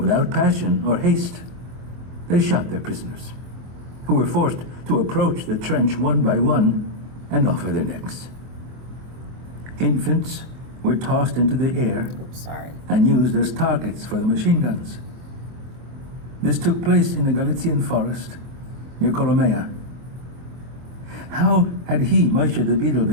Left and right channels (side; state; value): left; late; 24 ms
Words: passion or haste, they shot their prisoners, who were forced to approach the trench one by one and offer their necks. Infants were tossed into the air and used as targets for the machine guns. This took place in the Galician forest near Colomea. How had he, Moshe the Beadle,